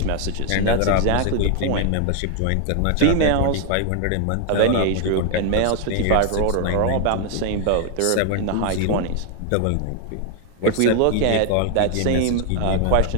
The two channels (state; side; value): different; both; correlation 0.00